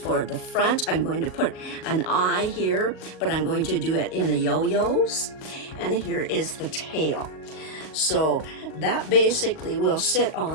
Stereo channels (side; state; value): right; late; 38 ms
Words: for the front. I'm going to put an eye here, but I'm going to do it in the yo-yos. And here is the tail. So that basically will sit